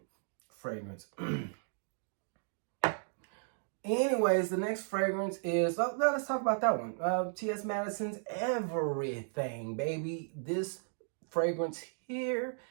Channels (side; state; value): left; silent; digital silence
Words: fragrance. Anyways, the next fragrance is, let's talk about that one. T.S. Madison's Everything, baby. This fragrance here